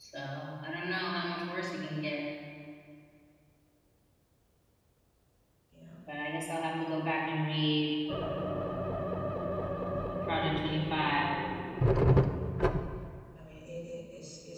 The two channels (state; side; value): identical; both; correlation 1.00